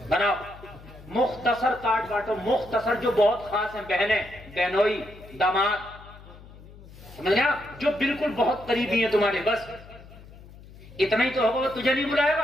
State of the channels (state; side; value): noise; left; hum, 19 dB below the sound